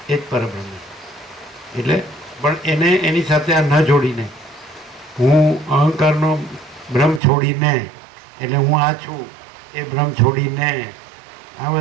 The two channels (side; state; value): left; drops out; at 7.2 s